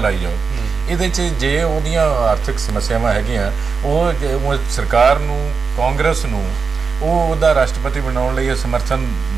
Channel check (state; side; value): quieter; left; 5.2 dB